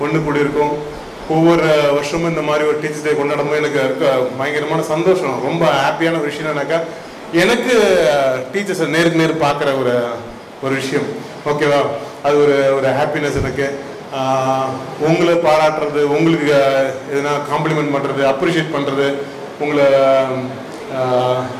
ஒன்று கூடி இருக்கோம். ஒவ்வொரு வருஷமும் இந்த மாதிரி ஒரு டீச்சர்ஸ் டே கொண்டாடும்போது எனக்கு இருக்க பயங்கரமான சந்தோஷம். ரொம்ப ஹாப்பியான ஒரு விஷயம் என்னன்னாக்கா எனக்கு டீச்சர்ஸை நேருக்கு நேர் பார்க்குற ஒரு விஷயம். ஓகேவா? அது ஒரு ஹாப்பினஸ் எனக்கு. உங்களை பாராட்டுறது, உங்களுக்கு எதுனா காம்ப்ளிமெண்ட் பண்ணுறது, அப்ரிஷியேட் பண்ணுறது, உங்களை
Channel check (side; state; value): both; identical; correlation 1.00